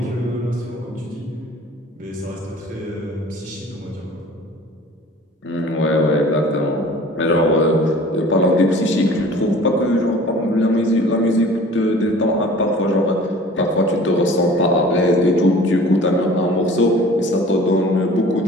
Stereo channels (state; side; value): normal; both; correlation 0.46